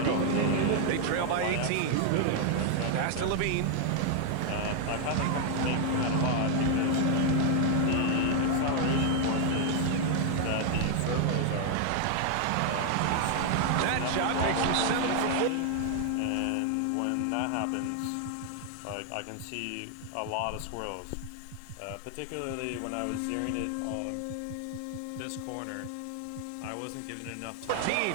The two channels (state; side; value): different; both; correlation 0.00